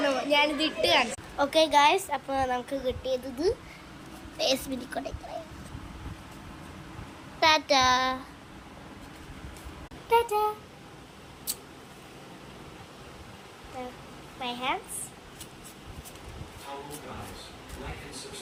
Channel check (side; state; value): both; identical; correlation 1.00